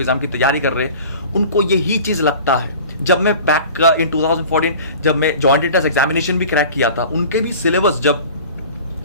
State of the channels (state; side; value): inverted; both; correlation -0.41